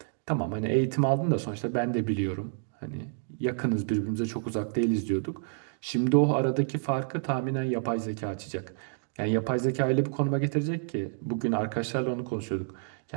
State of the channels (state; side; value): silent; left; digital silence